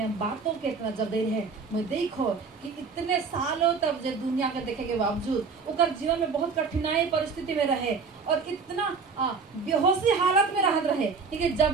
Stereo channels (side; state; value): left; quieter; 5.0 dB